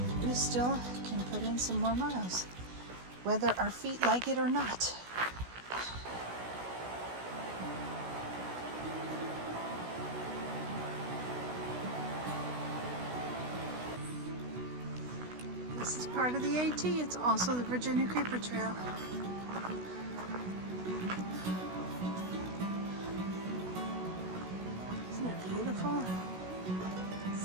we still can put in some more miles, whether our feet like it or not. This is part of the AT. It's also the Virginia Creeper Trail. Isn't it beautiful?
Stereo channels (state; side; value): late; left; 16 ms